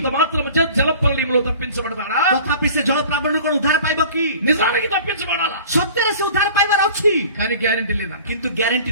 మాత్రం చేత జలప్రళయంలో తప్పించబడతాడా? ତଥାପି ସେ ଜଳ ପ୍ରାବଣରୁ କଣ ଉଦ୍ଧାର ପାଇବ କି? నిజానికి తప్పించబడాలా, ସତ୍ୟରେ ସେ ଉଦ୍ଧାର ପାଇବାର ଅଛି, కానీ గ్యారెంటీ లేదంట. କିନ୍ତୁ ଗ୍ୟାରେଣ୍ଟି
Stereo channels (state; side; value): inverted; both; correlation -0.44